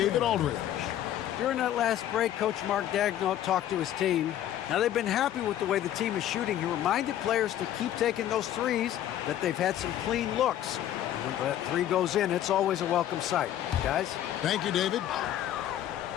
Aldridge. During that last break, Coach Mark Daigneault talked to his team. Now, they've been happy with the way the team is shooting. He reminded players to keep taking those threes, that they've had some clean looks. When that 3 goes in, it's always a welcome sight. Guys? Thank you, David.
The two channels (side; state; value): right; quieter; 11.8 dB